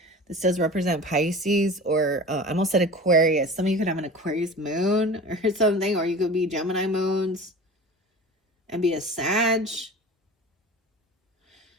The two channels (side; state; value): both; normal; correlation 0.36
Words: This does represent Pisces, or I almost said Aquarius. Some of you could have an Aquarius moon or something, or you could be Gemini moons and be a Sag,